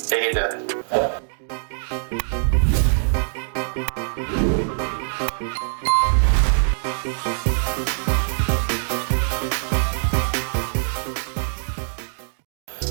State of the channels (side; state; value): left; silent; digital silence